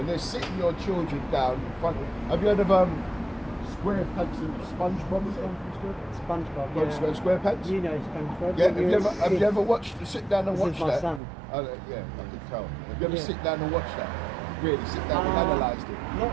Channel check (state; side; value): drops out; left; at 11.2 s